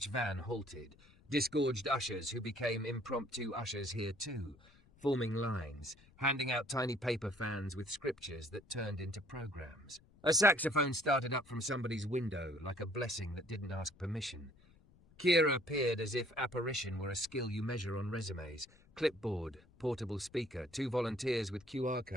van halted, disgorged ushers who became impromptu ushers here too, forming lines, handing out tiny paper fans with scriptures that turned into programs. A saxophone started up from somebody's window like a blessing that didn't ask permission. Kira appeared as if apparition were a skill you measure on resumes. Clipboard, portable speaker, 2 volunteers with QR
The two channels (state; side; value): noise; left; rumble, 27 dB below the sound